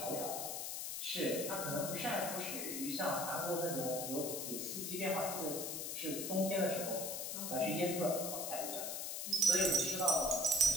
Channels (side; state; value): left; noise; hiss, 4 dB below the sound